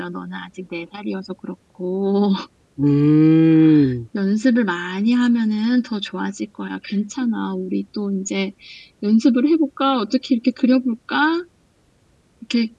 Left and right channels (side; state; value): both; identical; correlation 1.00